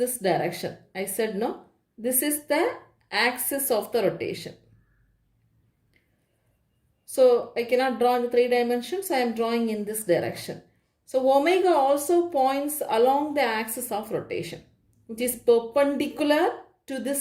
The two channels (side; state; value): both; identical; correlation 1.00